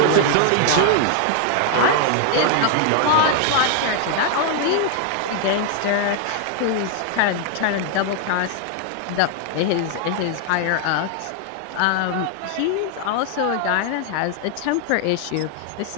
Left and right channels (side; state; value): both; different; correlation 0.00